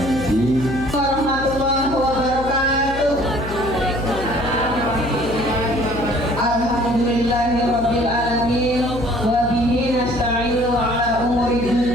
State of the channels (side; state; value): left; noise; hum, 10 dB below the sound